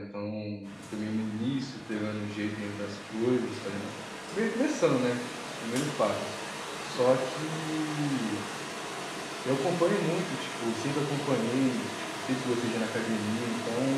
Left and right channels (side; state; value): both; identical; correlation 1.00